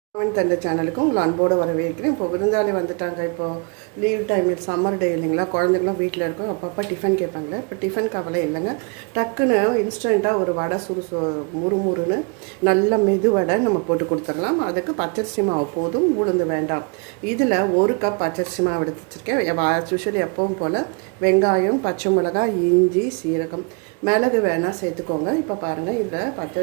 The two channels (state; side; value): quieter; left; 34.6 dB